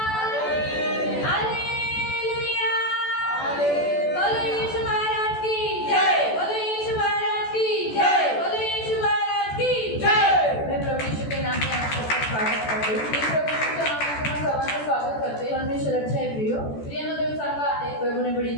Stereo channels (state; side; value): late; right; 14 ms